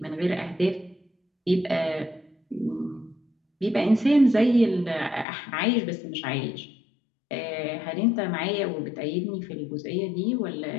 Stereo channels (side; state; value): right; drops out; at 5.2 s